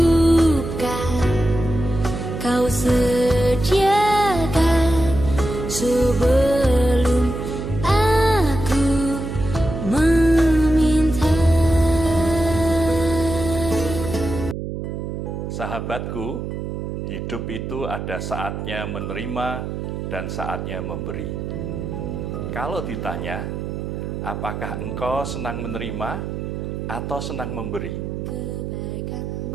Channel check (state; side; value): noise; right; hum, 5 dB below the sound